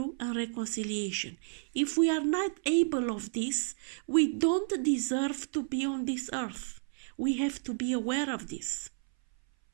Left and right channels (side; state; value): left; silent; 57 dB below the other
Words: and reconciliation. If we are not able of this, we don't deserve to be on this earth. We have to be aware of this.